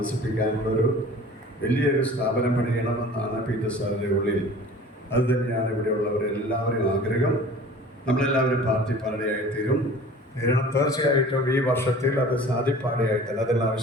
വലിയൊരു സ്ഥാപനം പണിയണമെന്നാണ് പീറ്റർ സാറിൻ്റെ ഉള്ളിൽ. അത് തന്നെയാണ് ഇവിടെയുള്ളവരെല്ലാവരും ആഗ്രഹം. നമ്മളെല്ലാവരും പാർട്ടി പാടയായിത്തീരും. തീർച്ചയായിട്ടും ഈ വർഷത്തിൽ അത് സാധിപ്പാടയായിത്തന്നെ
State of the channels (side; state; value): both; normal; correlation 0.44